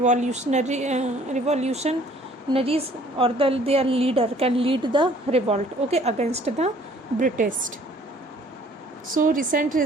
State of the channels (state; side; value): normal; both; correlation 0.57